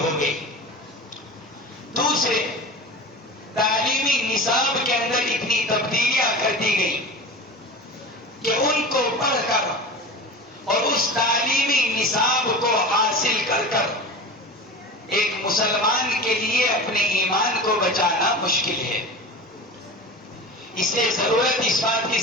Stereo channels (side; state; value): both; normal; correlation 0.32